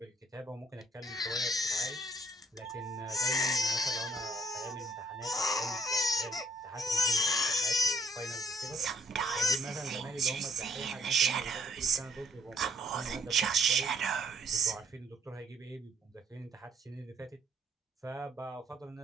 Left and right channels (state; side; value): normal; both; correlation 0.64